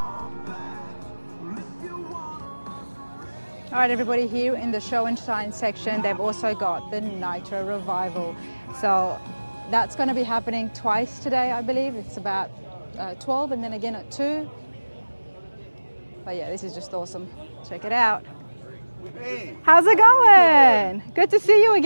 All right, everybody, here in the show and shine section, they've also got the Nitro Revival. So that's going to be happening twice today, I believe. It's about 12 and then again at 2. But yeah, this is just awesome. Check it out. Hey. How's it going? Good to see you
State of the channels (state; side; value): inverted; both; correlation -1.00